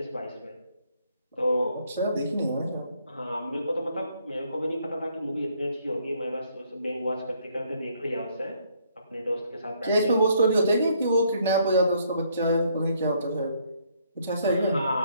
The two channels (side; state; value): both; inverted; correlation -0.68